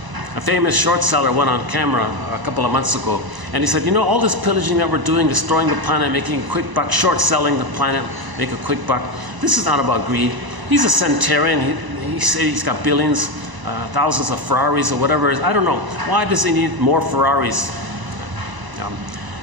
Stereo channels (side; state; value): left; late; 1.0 ms